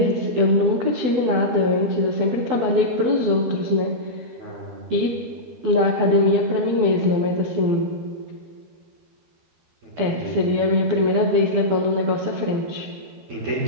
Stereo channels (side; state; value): left; late; 12 ms